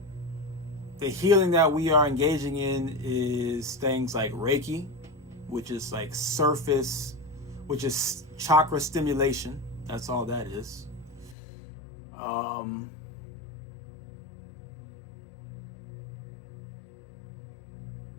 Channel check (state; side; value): drops out; right; at 11.4 s